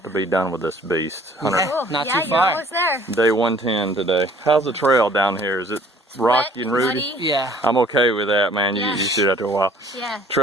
to be done with this beast. Cool. Not yeah, too you're far. almost there. Day 110 today. How's the trail down here? Is it rocky and rooty? Muddy. Yeah. I'm okay with that, man. You Yeah. used to do that after a while. Yeah.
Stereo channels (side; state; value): both; normal; correlation 0.55